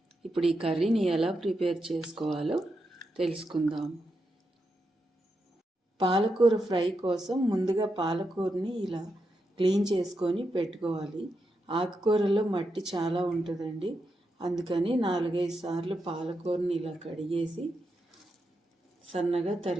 ఇప్పుడు ఈ కర్రీని ఎలా ప్రిపేర్ చేసుకోవాలో తెలుసుకుందాం. పాలకూర ఫ్రై కోసం ముందుగా పాలకూరని ఇలా క్లీన్ చేసుకొని పెట్టుకోవాలి. ఆకుకూరలో మట్టి చాలా ఉంటుందండి, అందుకని 4-5 సార్లు పాలకూరని ఇలా కడిగేసి సన్నగా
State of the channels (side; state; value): both; normal; correlation 0.85